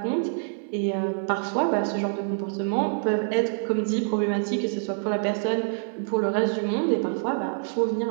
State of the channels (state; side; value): silent; left; digital silence